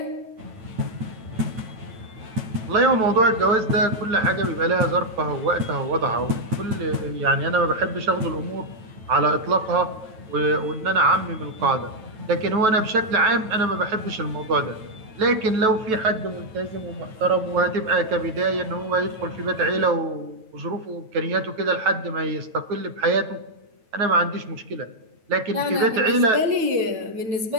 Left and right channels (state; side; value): late; left; 9.2 ms